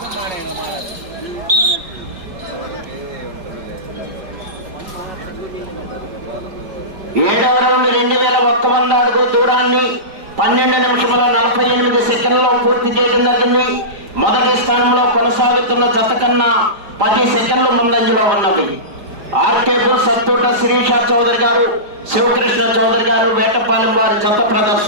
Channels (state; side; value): late; left; 5.0 ms